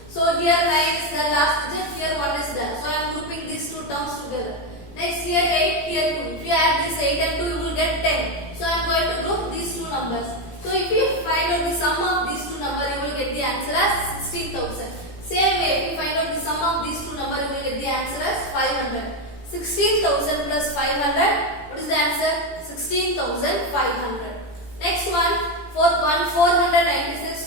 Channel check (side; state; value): right; late; 17 ms